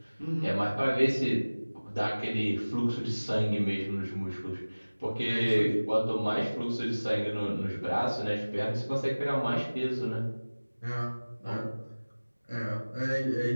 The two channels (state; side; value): inverted; both; correlation -1.00